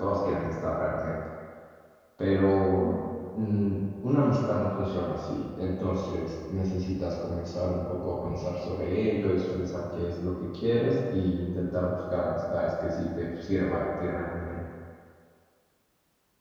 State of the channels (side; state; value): both; identical; correlation 1.00